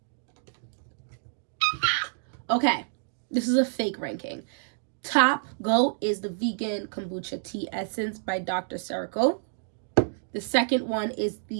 Okay, this is a fake ranking. Top GOAT is the vegan kombucha tea essence by Dr. Cleo. The second one is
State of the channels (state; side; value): silent; left; digital silence